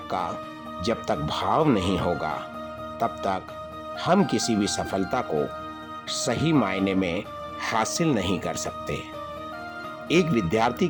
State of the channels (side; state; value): both; identical; correlation 1.00